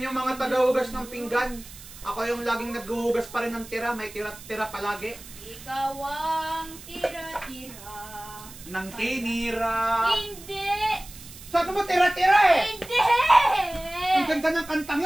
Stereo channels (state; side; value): noise; right; hiss, 17 dB below the sound